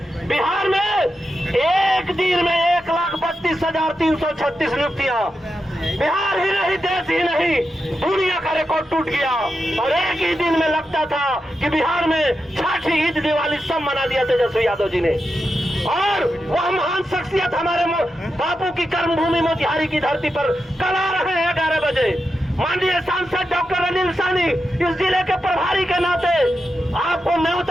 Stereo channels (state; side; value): normal; both; correlation 0.88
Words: बिहार में एक दिन में 1,32,336 नियुक्तियां, बिहार ही नहीं, देश ही नहीं, दुनिया का रिकॉर्ड टूट गया। और एक ही दिन में लगता था कि बिहार में छठी ईद दिवाली सब मना दिया तेजस्वी यादव जी ने। और वह महान शख्सियत हमारे बापू की कर्मभूमि मोतिहारी की धरती पर कल आ रहे हैं 11 बजे। माननीय सांसद डॉक्टर अनिल सानी इस जिले के प्रभारी के नाते आपको